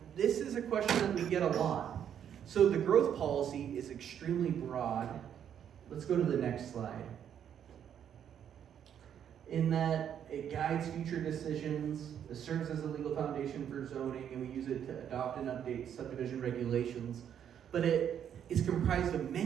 this is a question that we get a lot. So the growth policy is extremely broad. Let's go to the next slide. In that it guides future decisions, it serves as a legal foundation for zoning, and we use it to adopt and update subdivision regulations. But it is comprised of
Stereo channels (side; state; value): left; quieter; 9.1 dB